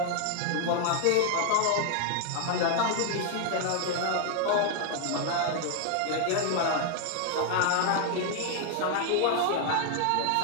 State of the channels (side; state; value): both; different; correlation 0.00